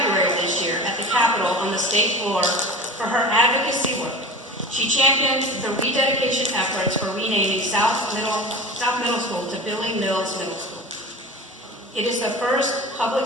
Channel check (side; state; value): both; normal; correlation 0.35